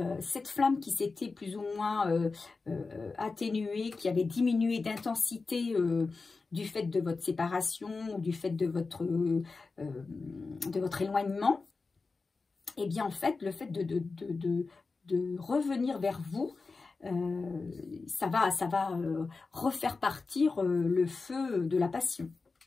cette flamme qui s'était plus ou moins atténuée, qui avait diminué d'intensité du fait de votre séparation ou du fait de votre éloignement, et bien en fait, le fait de revenir vers vous, ça va refaire partir le feu de la passion.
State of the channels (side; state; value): right; quieter; 4.1 dB